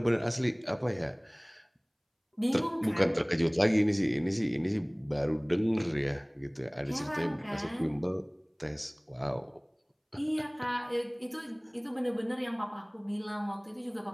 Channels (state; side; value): identical; both; correlation 1.00